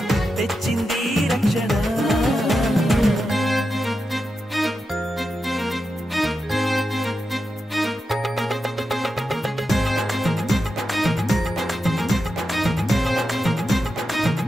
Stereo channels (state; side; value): normal; both; correlation 0.89